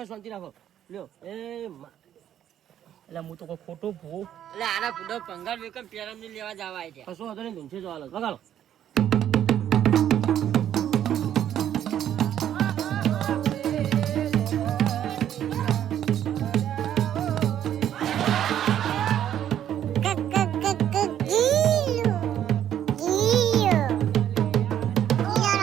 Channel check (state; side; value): quieter; left; 10.6 dB